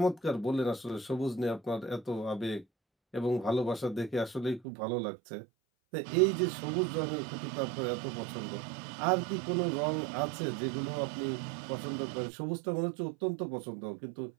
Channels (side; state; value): left; drops out; at 4.6 s